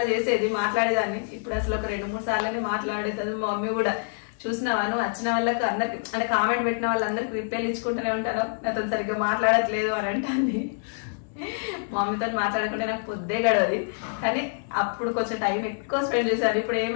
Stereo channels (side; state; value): right; silent; 61 dB below the other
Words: చేసేది, మాట్లాడేదాన్ని. ఇప్పుడు అసలు ఒక 2-3 సార్లని మాట్లాడేది. మా మమ్మీ కూడా చూసినావా నువ్వు వచ్చిన వాళ్ళకి అందరికి, అంటే కామెంట్ పెట్టిన వాళ్ళందరికి రిప్లైలు ఇచ్చుకుంటూనే ఉంటాను, నాతో సరిగ్గా మాట్లాడట్లేదు అని అంటుంది. మా మమ్మీతో మాట్లాడకుండా నాకు పొద్దే గడవది. కానీ అప్పుడు కొంచెం టైం ఎక్కువ స్పెండ్ చేశారు. ఇప్పుడు